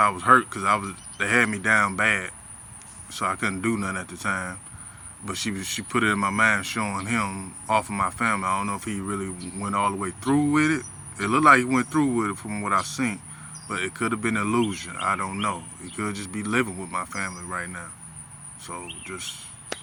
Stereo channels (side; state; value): both; identical; correlation 1.00